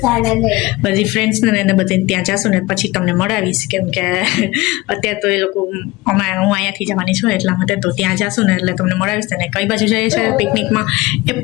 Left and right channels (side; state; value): right; quieter; 20.7 dB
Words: બધી ફ્રેન્ડ્સને એને બધી ત્યાં જશું ને પછી તમને મળાવીશ કેમ કે અત્યારે તો એ લોકો હું અહીંયાથી જવાની છું એટલા માટે તો ત્યાં જશું ને એટલે તમને મળાવીશ ને કઈ બાજુ જઈએ છે પિકનિકમાં એ